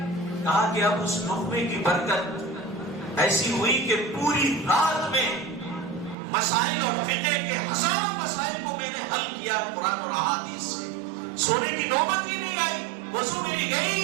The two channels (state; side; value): drops out; left; at 6.2 s